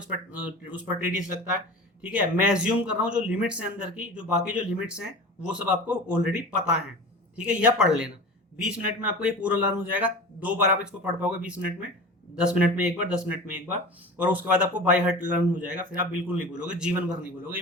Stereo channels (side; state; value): both; normal; correlation 0.34